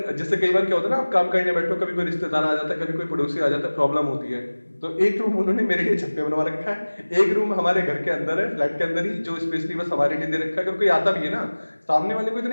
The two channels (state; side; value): inverted; both; correlation -1.00